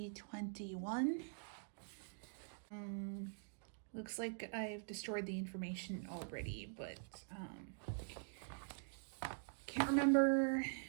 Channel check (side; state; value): left; silent; digital silence